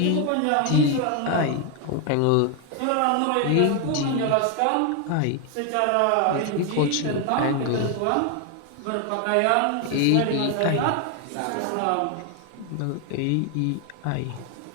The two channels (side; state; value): both; different; correlation 0.01